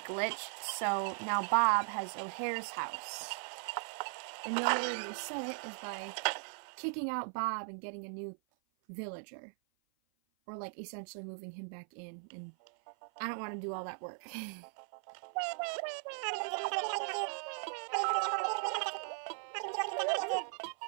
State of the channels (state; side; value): silent; left; 52 dB below the other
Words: glitched. So now Bob has O'Hare's house. And the only way to reset it is by kicking out Bob and getting a new villager, or like essentially moving him back in. And I don't want to do all that work.